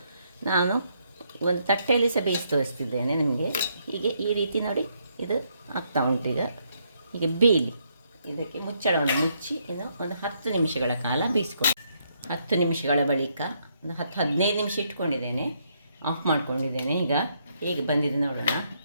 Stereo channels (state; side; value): inverted; both; correlation -0.74